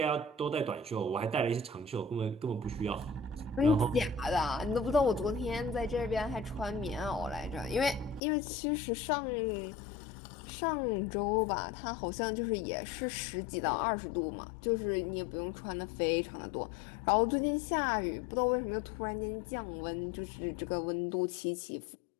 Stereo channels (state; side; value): drops out; right; at 8.2 s